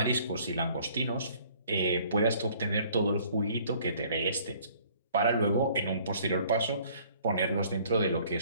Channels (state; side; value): inverted; both; correlation -0.57